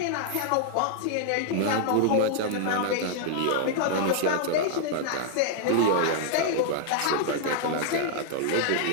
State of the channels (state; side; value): different; both; correlation -0.01